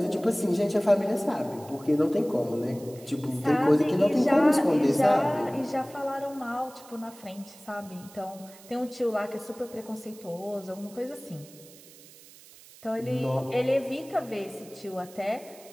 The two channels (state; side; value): noise; right; hiss, 21 dB below the sound